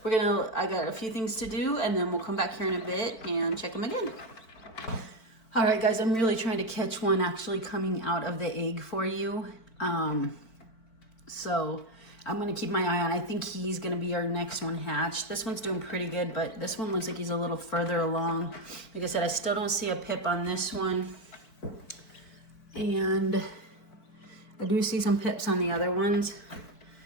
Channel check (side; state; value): right; late; 4.5 ms